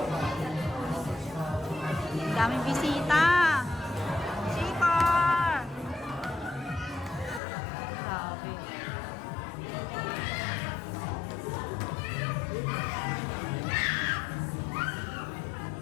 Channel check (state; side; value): drops out; right; at 7.4 s